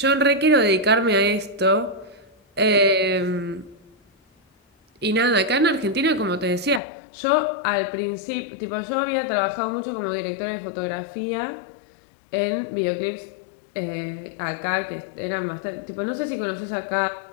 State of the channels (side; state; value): right; drops out; at 6.8 s